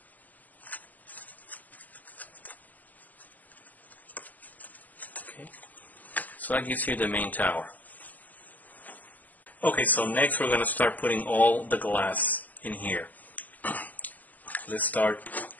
Okay, so that gives you the main tower. Okay, so next we're going to start putting all the glass in here. Let's start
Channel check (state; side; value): late; right; 0.080 ms